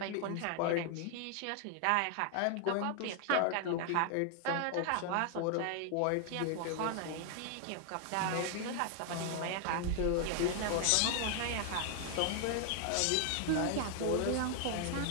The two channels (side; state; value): both; different; correlation 0.00